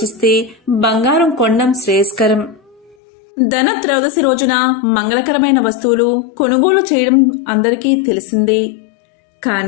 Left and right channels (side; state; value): right; drops out; at 3.0 s